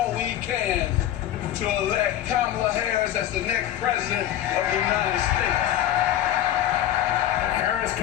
we can to elect Kamala Harris as the next president of the United States. The Harris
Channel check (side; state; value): right; quieter; 11.9 dB